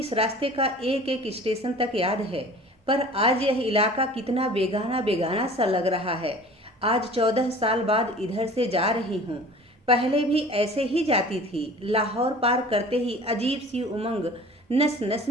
रास्ते का एक एक स्टेशन तक याद है, पर आज यह इलाका कितना बेगाना बेगाना सा लग रहा है। आज 14 साल बाद इधर से जा रही हूँ। पहले भी ऐसे ही जाती थी। लाहौर पार करते ही अजीब सी उमंग नस नस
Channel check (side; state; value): both; normal; correlation 0.44